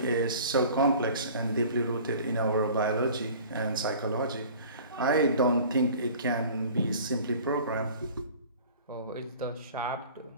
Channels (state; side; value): inverted; both; correlation -0.45